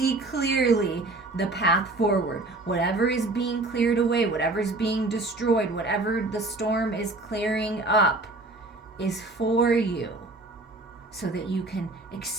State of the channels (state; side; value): quieter; left; 3.0 dB